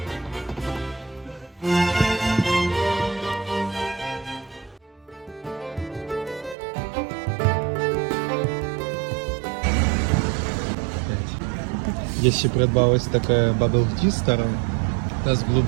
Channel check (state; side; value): drops out; left; at 6.6 s